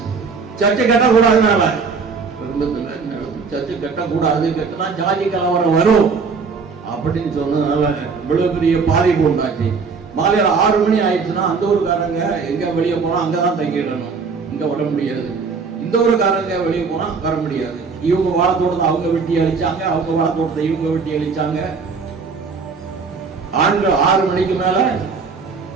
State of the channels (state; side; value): quieter; left; 5.0 dB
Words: சர்ச்சை கட்டக்கூடாதுனால சர்ச்சை கட்டக்கூடாது, கட்டினா ஜாதி கலவரம் வரும் அப்படின்னு சொன்னதுனால இவ்வளவு பெரிய பாதிப்பு உண்டாச்சு. மாலையில 6 மணி ஆயிடுச்சுன்னா அந்த ஊருக்காரங்க எங்க வெளியே போனா அங்கதான் தங்கிடணும், இங்க வர முடியாது. இந்த ஊருக்காரங்க வெளியே போனா வர முடியாது. இவங்க வாழத்தோட்டத்தை அவங்க வெட்டி அழிச்சாங்க, அவங்க வாழத்தோட்டத்தை இவங்க வெட்டி அழிச்சாங்க. ஆண்கள் 6 மணிக்கு மேல